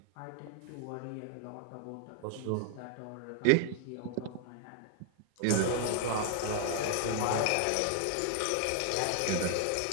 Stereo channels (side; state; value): both; different; correlation 0.00